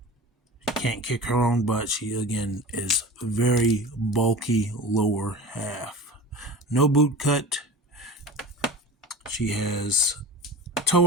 can't kick her own butt. She, again, is very bulky lower half. No boot cut. She has toe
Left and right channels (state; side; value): normal; both; correlation 0.34